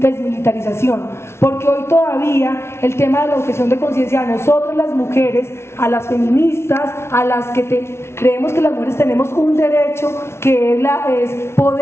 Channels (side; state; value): right; late; 0.12 ms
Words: porque hoy todavía el tema de la objeción de conciencia a nosotros las mujeres, a las feministas, a las que creemos que las mujeres tenemos un derecho que es